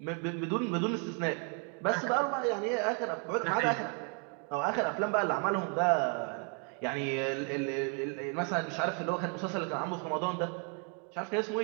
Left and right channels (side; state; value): left; quieter; 38.7 dB